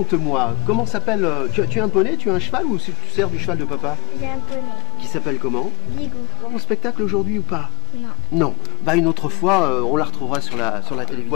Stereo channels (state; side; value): quieter; right; 26.0 dB